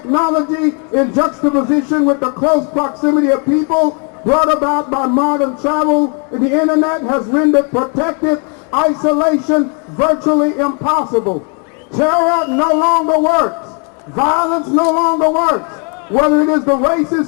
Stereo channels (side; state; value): right; quieter; 38.4 dB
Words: in juxtaposition with the close proximity of people brought about by modern travel and the internet has rendered protective isolation virtually impossible. Terror no longer works. Violence no longer works. Whether it is the racists